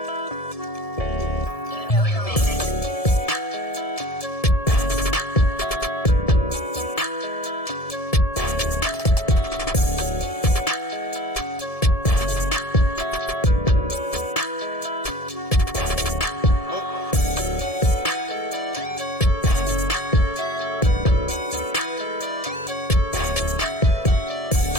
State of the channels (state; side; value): late; right; 1.7 ms